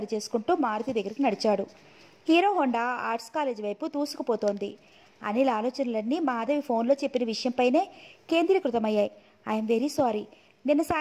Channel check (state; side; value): identical; both; correlation 1.00